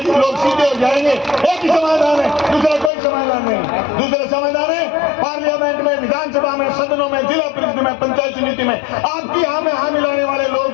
लोग सीधे हो जाएंगे। एक ही समाधान है, दूसरा कोई समाधान नहीं। दूसरा समाधान है पार्लियामेंट में, विधानसभा में, सदनों में, जिला परिषद में, पंचायत समिति में आपकी हाँ में हाँ मिलाने वाले लोग।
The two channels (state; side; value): drops out; right; at 2.9 s